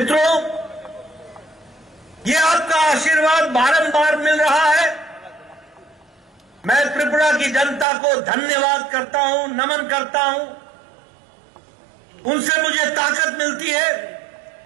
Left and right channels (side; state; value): left; drops out; at 7.9 s